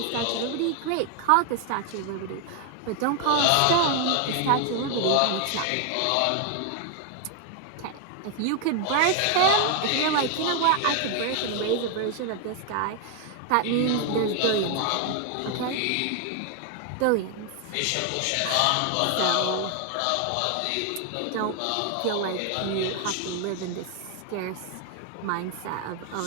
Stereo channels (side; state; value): both; different; correlation 0.00